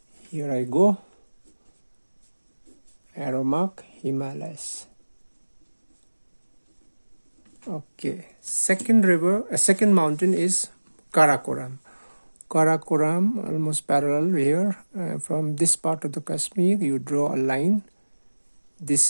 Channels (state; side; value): inverted; both; correlation -1.00